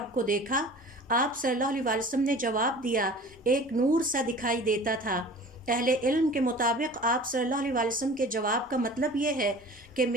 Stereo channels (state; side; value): normal; both; correlation 0.42